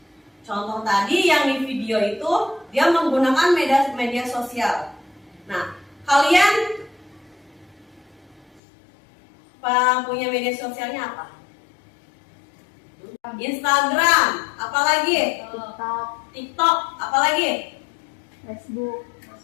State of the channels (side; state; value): right; drops out; at 8.6 s